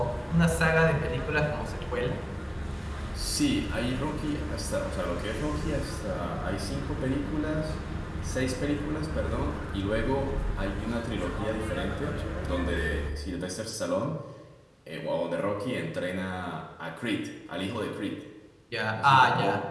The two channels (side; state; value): both; identical; correlation 1.00